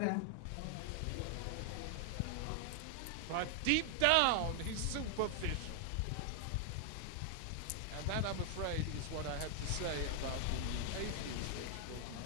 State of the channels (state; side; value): different; both; correlation 0.00